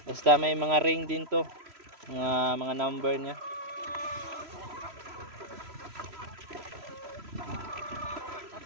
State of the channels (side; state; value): left; late; 3.0 ms